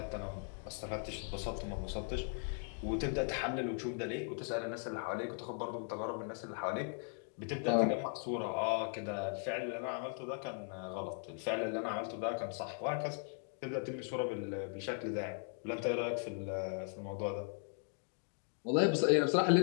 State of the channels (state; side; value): silent; right; 52 dB below the other